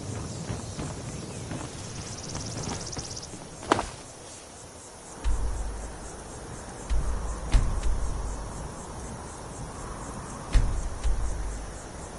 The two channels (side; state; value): both; identical; correlation 1.00